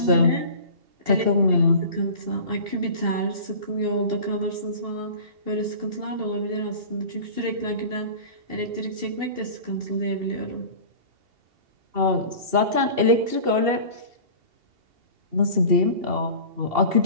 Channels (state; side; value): late; left; 2.7 ms